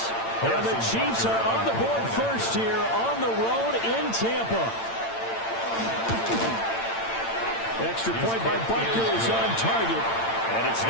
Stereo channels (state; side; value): late; right; 8.8 ms